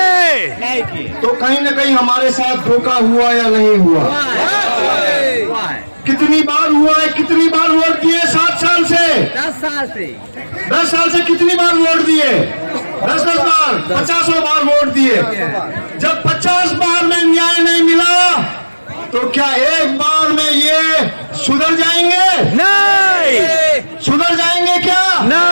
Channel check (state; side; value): inverted; both; correlation -1.00